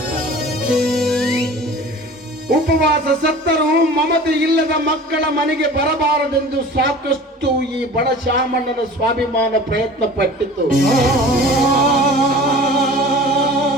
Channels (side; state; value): both; normal; correlation 0.41